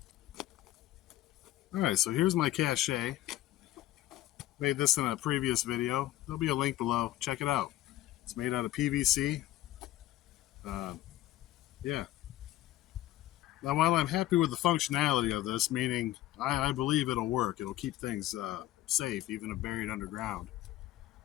All right, so here's my cache. Made this in a previous video. There'll be a link below. Check it out. It's made out of PVC. Yeah. Now, while I'm happy with the functionality of this, meaning I believe it'll work. It'll keep things safe, even if buried underground.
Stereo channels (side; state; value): right; quieter; 15.0 dB